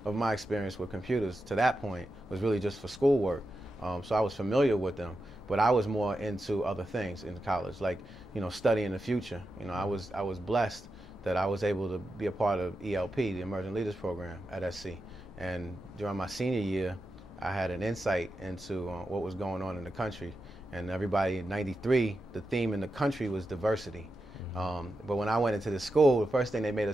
of my experience with computers to that point, was really just for schoolwork. So I was familiar with them, but I was more into other things in college, like, you know, studying the future. You know, I was blessed that I was able to be a part of ELP, the Emerging Leaders Program at SC. And during my senior year, I had an insight into what was going on in the country. And everybody in '93, the theme in the country was diversity. But when I went into the school, the first thing they made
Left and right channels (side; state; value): both; normal; correlation 0.89